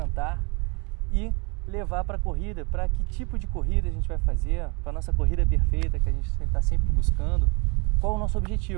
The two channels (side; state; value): left; quieter; 31.0 dB